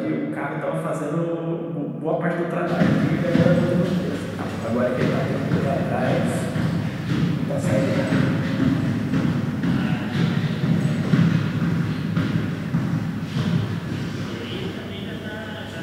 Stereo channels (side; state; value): both; identical; correlation 1.00